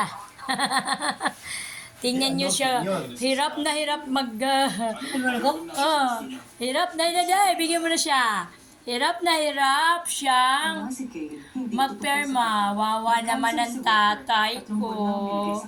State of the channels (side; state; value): both; identical; correlation 1.00